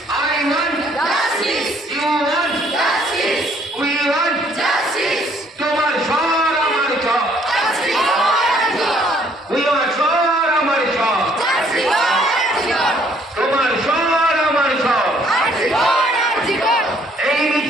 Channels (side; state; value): both; normal; correlation 0.64